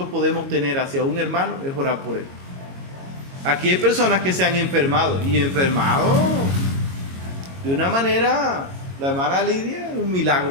podemos tener hacia un hermano es orar por él. Aquí hay personas que se han enfermado y enfermado de una manera, la hermana Lidia, un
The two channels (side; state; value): left; late; 22 ms